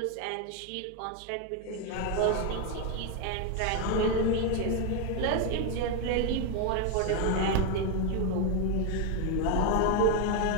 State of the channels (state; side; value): different; both; correlation 0.01